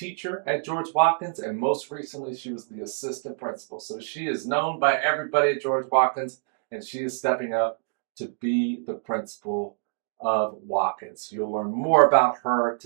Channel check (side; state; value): left; silent; 61 dB below the other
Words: at George Watkins, and most recently she was the assistant principal. So she is known by everybody at George Watkins, and she is stepping up to be the principal of Watkins. You'll learn more about her